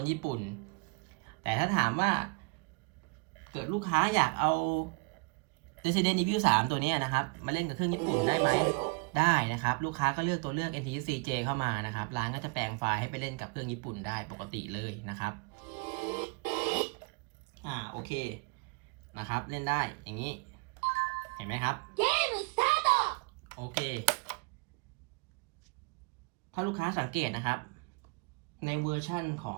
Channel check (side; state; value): left; quieter; 31.7 dB